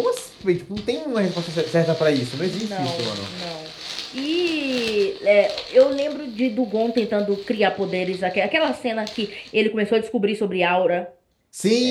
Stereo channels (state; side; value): identical; both; correlation 1.00